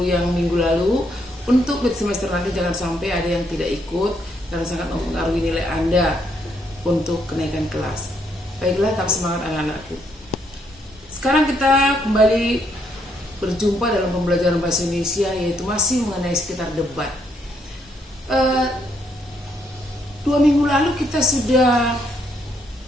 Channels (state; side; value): normal; both; correlation 0.73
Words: yang minggu lalu, untuk mid semester nanti jangan sampai ada yang tidak ikut karena sangat mempengaruhi nilai Anda untuk kenaikan kelas. Baiklah, tetap semangat anak-anakku. Sekarang kita kembali berjumpa dalam pembelajaran bahasa Indonesia, yaitu masih mengenai sekitar debat. 2 minggu lalu kita sudah